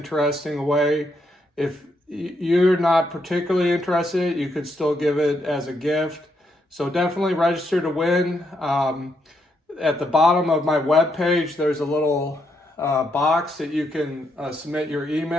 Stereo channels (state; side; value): normal; both; correlation 0.78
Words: away. If you're not particularly interested, you could still give it as a gift. So definitely register to win. At the bottom of my webpage, there's a little box that you can submit your